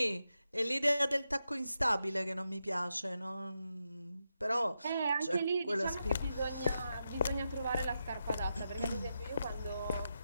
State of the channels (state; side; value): inverted; both; correlation -0.86